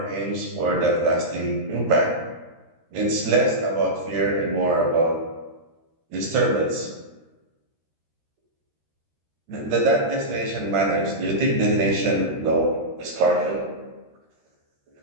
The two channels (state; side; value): late; left; 13 ms